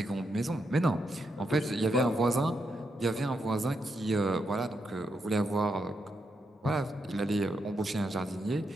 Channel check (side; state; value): both; normal; correlation 0.82